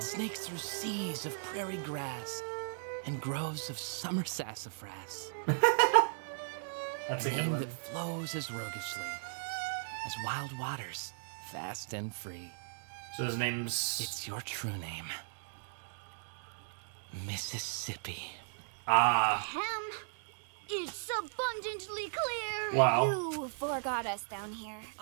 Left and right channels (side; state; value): left; silent; digital silence